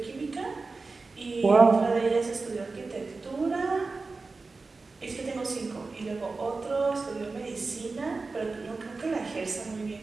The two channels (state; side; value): quieter; left; 3.9 dB